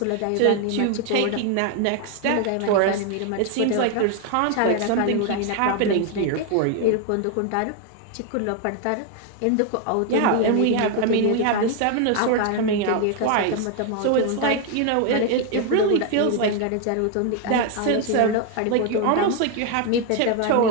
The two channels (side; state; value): both; different; correlation 0.01